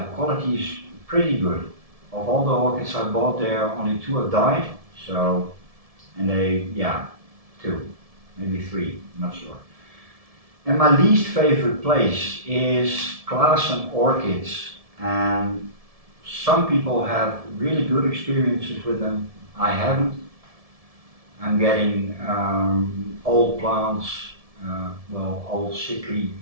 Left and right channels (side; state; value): left; late; 1.7 ms